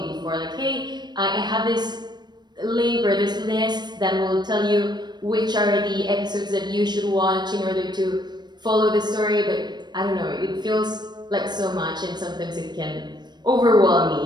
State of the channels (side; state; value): left; late; 0.21 ms